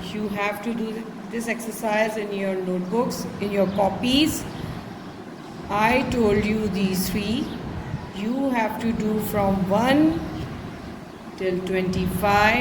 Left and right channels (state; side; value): identical; both; correlation 1.00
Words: you have to do this exercise in your notebooks, in your copies. I told you these three. You have to do from 1 till